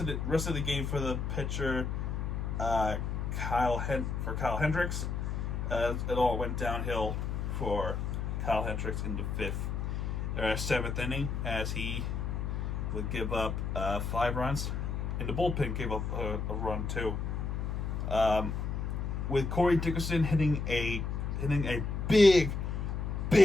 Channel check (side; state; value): left; noise; hum, 2 dB below the sound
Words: the game for the pitcher Kyle Hendricks, it all went downhill for Kyle Hendricks in the seventh inning, as he would give up 5 runs, and the bullpen gave up a run too. With Corey Dickerson hitting a big